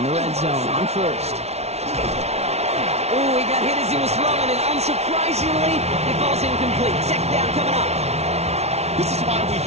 the red zone on 1st. Oh, he got hit as he was throwing, and unsurprisingly, he falls incomplete. 2nd down coming up. This is why we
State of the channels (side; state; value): left; late; 0.31 ms